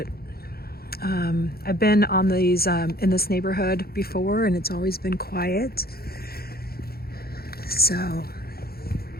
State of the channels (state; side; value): late; right; 0.45 ms